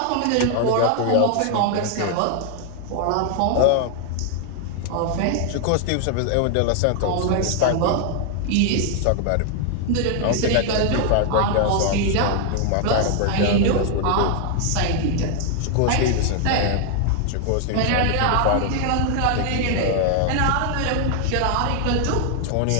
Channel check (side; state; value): both; different; correlation 0.00